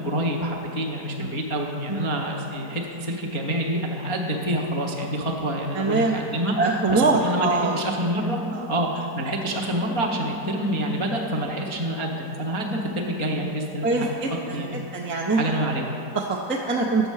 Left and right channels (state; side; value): late; right; 4.3 ms